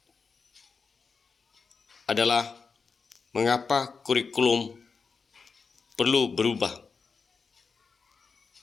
adalah mengapa kurikulum perlu berubah.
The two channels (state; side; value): quieter; right; 5.0 dB